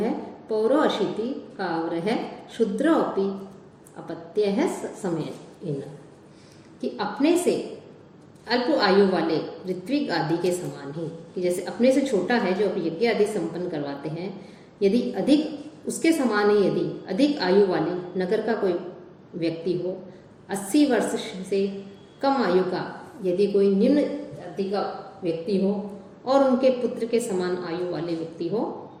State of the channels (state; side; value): identical; both; correlation 1.00